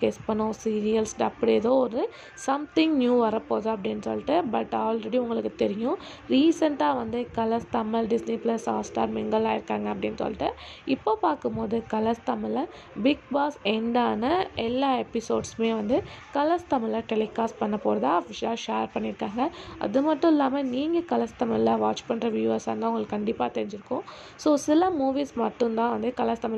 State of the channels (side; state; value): both; identical; correlation 1.00